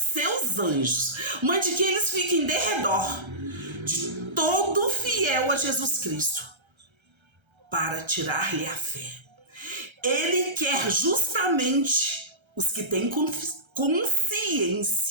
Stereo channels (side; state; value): left; late; 1.3 ms